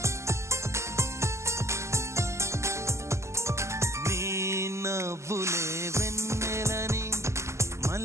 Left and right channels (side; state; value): left; late; 0.13 ms